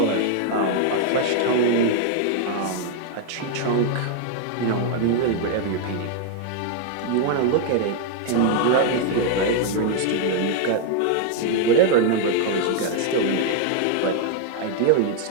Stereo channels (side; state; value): both; different; correlation 0.00